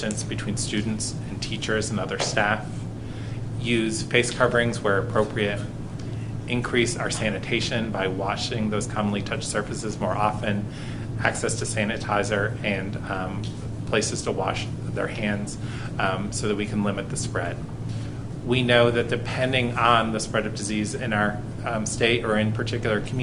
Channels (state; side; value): identical; both; correlation 1.00